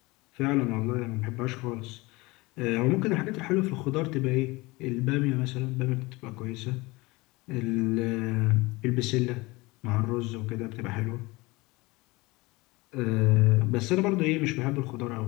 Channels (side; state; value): right; quieter; 22.9 dB